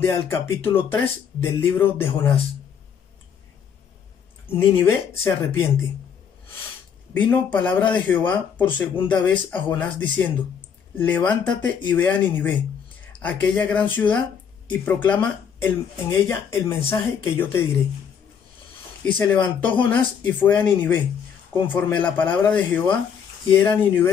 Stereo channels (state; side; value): quieter; right; 7.4 dB